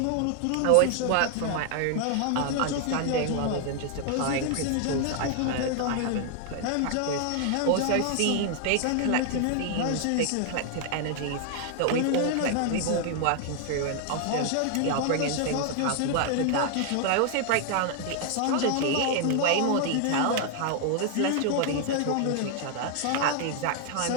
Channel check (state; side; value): different; both; correlation 0.00